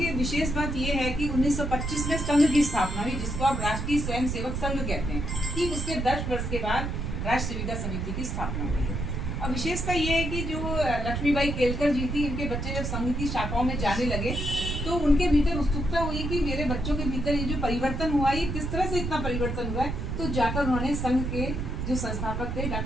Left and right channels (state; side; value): noise; right; rumble, 3 dB below the sound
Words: विशेष बात ये है कि 1925 में संघ की स्थापना हुई, जिसको आप राष्ट्रीय स्वयंसेवक संघ कहते हैं। ठीक उसके 10 वर्ष के बाद राष्ट्र सेविका समिति की स्थापना हुई है। और विशेषता ये है कि जो लक्ष्मीबाई केलकर जी थी, इनके बच्चे जब संघ की शाखाओं में जाने लगे तो उनके भीतर उत्सुकता हुई कि मेरे बच्चों के भीतर ये जो परिवर्तन हुआ, ये किस तरह से इतना परिवर्तन हुआ है। तो जाकर उन्होंने संघ के जो संस्थापक थे